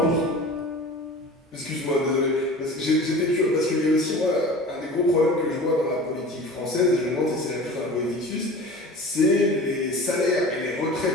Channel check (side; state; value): both; normal; correlation 0.38